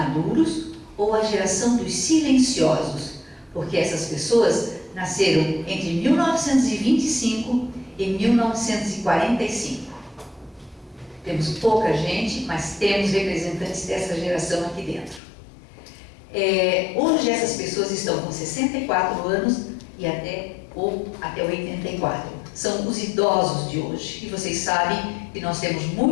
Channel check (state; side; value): drops out; right; at 15.2 s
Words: ou a geração dos silenciosos, porque essas pessoas nasceram entre 1925 e 1945. Temos pouca gente, mas temos representantes dessa geração aqui dentro. Hoje essas pessoas estão com 64 anos e até 84. São os idosos de hoje. E vocês sabem que nós temos